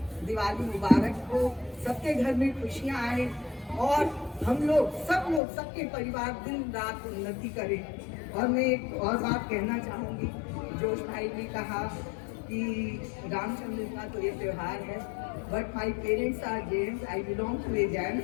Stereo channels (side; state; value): right; drops out; at 5.4 s